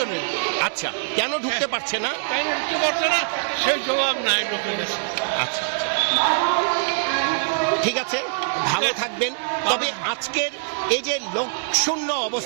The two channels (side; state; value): left; silent; digital silence